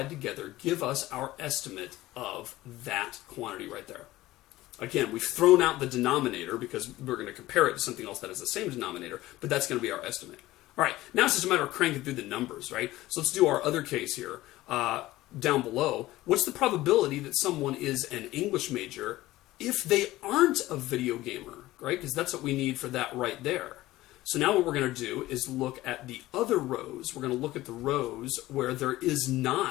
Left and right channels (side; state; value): right; quieter; 17.0 dB